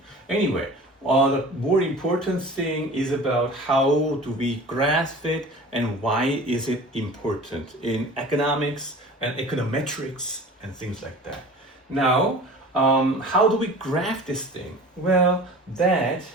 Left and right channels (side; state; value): both; normal; correlation 0.41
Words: Anyway, the more important thing is about how do we graph it and why is it important in economics and econometrics and things like that. Now, how do we graph this thing? Well, that